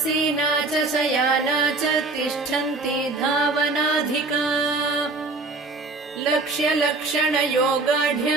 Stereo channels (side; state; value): left; quieter; 3.4 dB